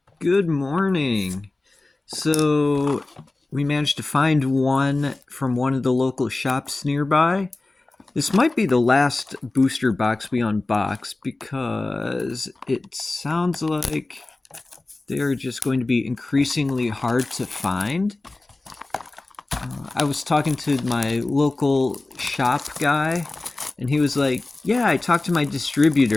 Good morning. So, we managed to find one from one of the local shops nearby. This might be the last booster box we unbox because it sounds like they're just going to be increasingly hard to find. I was talking to my local shop guy, and he was like, "Yeah, I talked to my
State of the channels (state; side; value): quieter; right; 3.1 dB